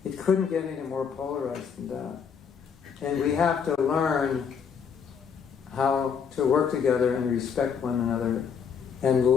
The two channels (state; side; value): quieter; right; 6.8 dB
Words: It couldn't get any more polarized than that. And we have to learn how to work together and respect one another and